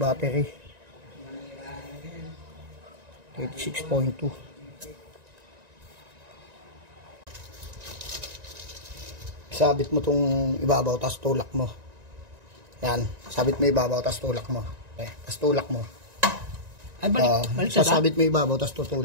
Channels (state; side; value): late; left; 1.9 ms